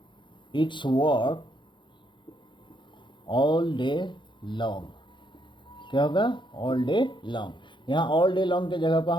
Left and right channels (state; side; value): late; right; 0.23 ms